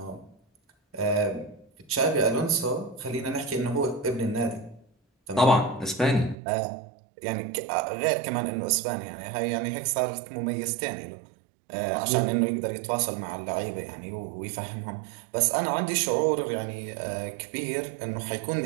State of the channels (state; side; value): drops out; left; at 6.4 s